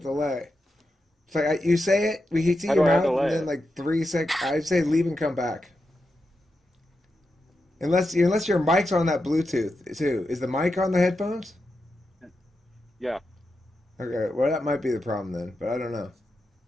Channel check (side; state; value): both; normal; correlation 0.88